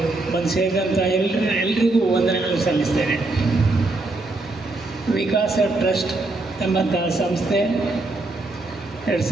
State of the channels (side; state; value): left; quieter; 3.0 dB